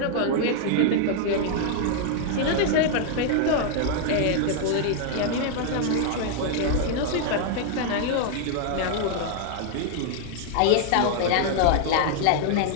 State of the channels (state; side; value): different; both; correlation 0.00